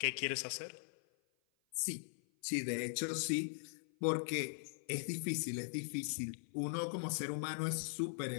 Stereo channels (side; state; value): right; silent; 51 dB below the other